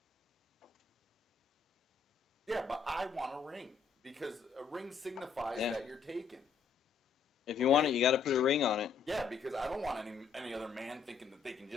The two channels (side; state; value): right; quieter; 6.0 dB